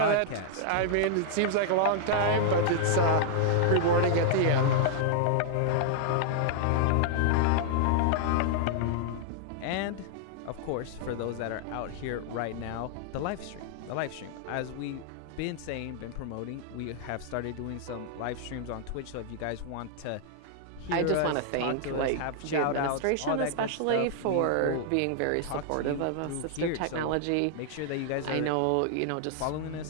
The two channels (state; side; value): different; both; correlation -0.01